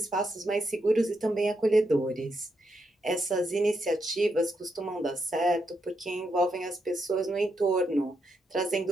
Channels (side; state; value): both; normal; correlation 0.82